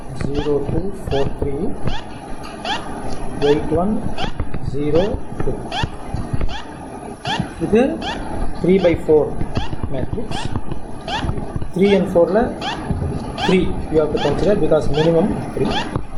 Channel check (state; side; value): identical; both; correlation 1.00